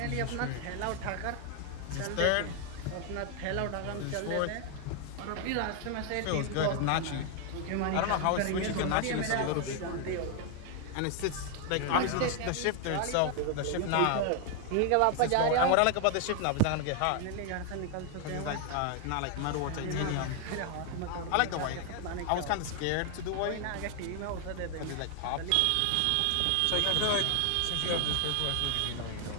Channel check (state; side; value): different; both; correlation 0.00